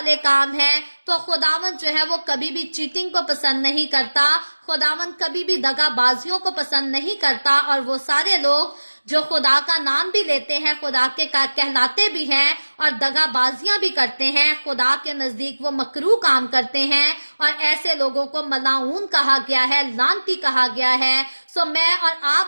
काम है। तो खुदावन जो है वो कभी भी चीटिंग को पसंद नहीं करता, खुदावन कभी भी दगाबाजियों को पसंद नहीं करता। और वो सारे लोग जो खुदा का नाम भी लेते हैं, खुदा के कहलाते भी हैं और दगाबाजियां भी करते हैं, खुदा के नजदीक वो मकरूह काम करते हैं और ऐसे लोगों को मलाऊन कहा गया है, लानती कहा गया है। सो मैं और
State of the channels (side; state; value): both; inverted; correlation -1.00